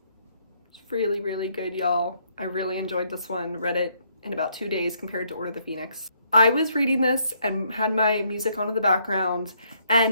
It's really, really good, y'all. I really enjoyed this one. Read it in about 2 days compared to Order of the Phoenix. I was reading this and had my music on in the background,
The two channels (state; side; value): inverted; both; correlation -0.70